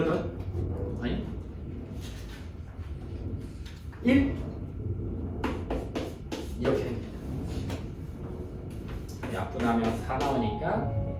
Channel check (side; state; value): both; identical; correlation 1.00